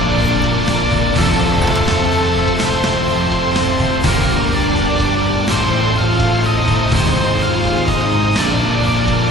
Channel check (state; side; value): normal; both; correlation 0.55